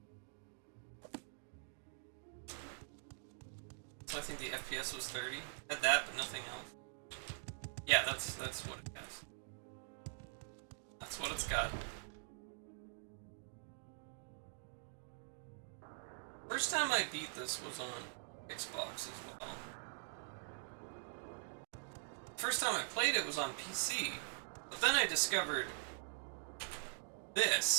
So I think the FPS was 30. Had that, but nothing else. Yeah, that's what it has. That's what it's got. First time I beat this was on Xbox as well. First time I played it was on PC. But then I discovered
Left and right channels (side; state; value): left; silent; digital silence